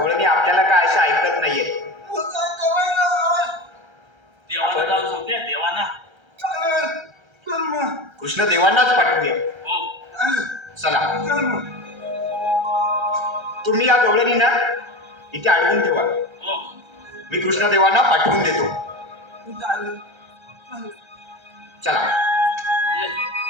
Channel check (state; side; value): late; left; 1.3 ms